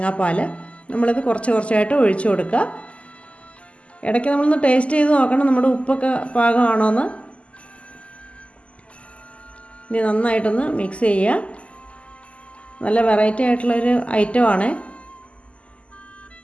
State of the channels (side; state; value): right; late; 0.059 ms